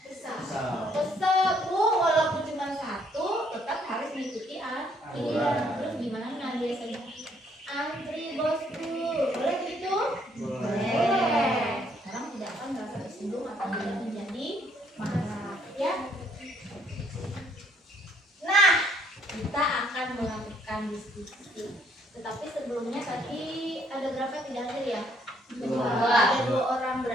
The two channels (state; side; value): normal; both; correlation 0.67